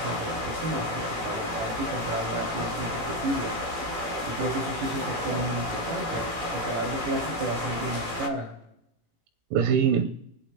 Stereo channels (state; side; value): late; left; 17 ms